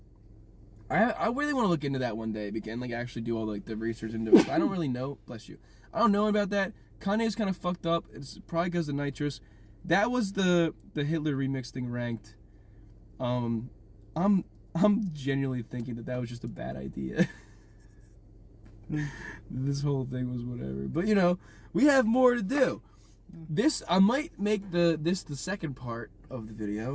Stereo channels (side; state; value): both; identical; correlation 1.00